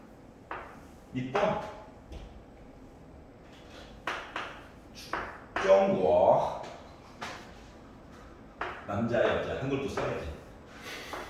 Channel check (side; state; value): both; identical; correlation 1.00